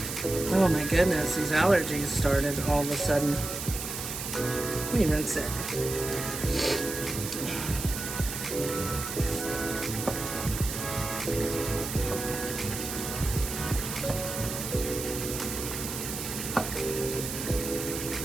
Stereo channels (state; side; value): noise; right; hiss, 6 dB below the sound